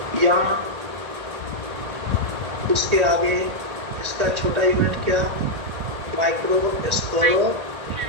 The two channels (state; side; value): late; left; 1.9 ms